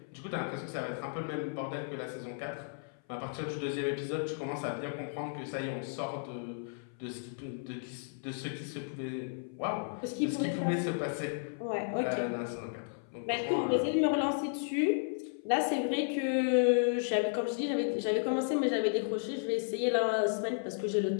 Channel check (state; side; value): silent; right; 55 dB below the other